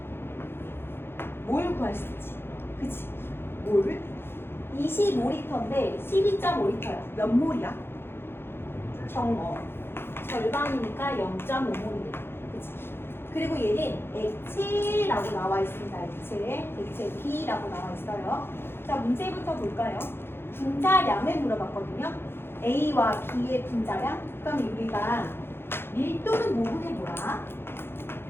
뭘 구할 수 있지? 그치? 몰? 25리터인데 12.5리터야. 몇 몰이야? 정어. 절반이니까 0.5몰이 돼. 그치? 그리고 얘는 액체라고 나와 있습니다. 액체 B라고 나와 있어요. 자, 문제부터 볼까요? 분자량을 물어봤거든요. A와 B의 분자량? 그럼 우리가 밀도는 모분의 뭐야?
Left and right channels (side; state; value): right; late; 0.11 ms